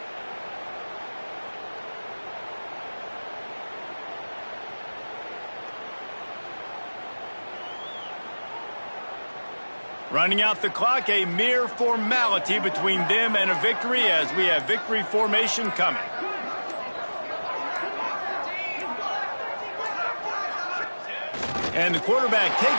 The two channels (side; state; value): both; inverted; correlation -1.00